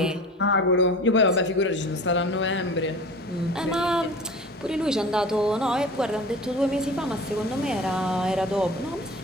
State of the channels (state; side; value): normal; both; correlation 0.38